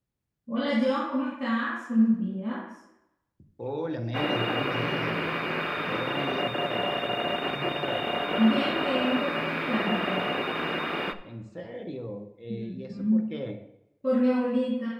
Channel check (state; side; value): identical; both; correlation 1.00